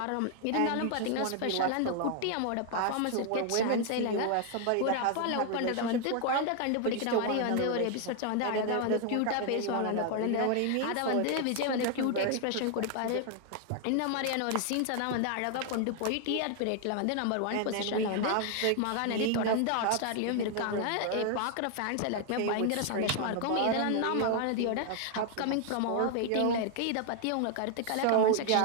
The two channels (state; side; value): different; both; correlation 0.00